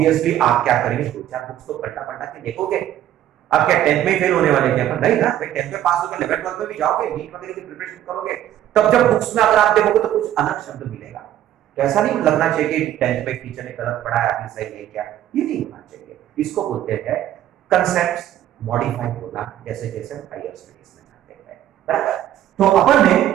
आप क्या करेंगे, दो चार बुक्स तो पलटा पलटा के देखोगे। आप क्या 10th में फेल होने वाले क्या? पर नहीं ना भाई, 10th में पास होकर 11th 12th में भी जाओगे, नीट वगैरह की प्रिपरेशन करोगे, तब जब बुक्स में अगर आप देखोगे तो कुछ अलग शब्द मिलेगा। तो ऐसा नहीं लगना चाहिए कि 10th में टीचर ने गलत पढ़ाया, आपने सही है क्या, ये नहीं होना चाहिए। इसको बोलते हैं कंसेप्ट्स मॉडिफाई होना, जैसे जैसे हायर स्टडीज में जाते हैं, बराबर। तो अपन ने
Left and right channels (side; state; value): left; quieter; 11.9 dB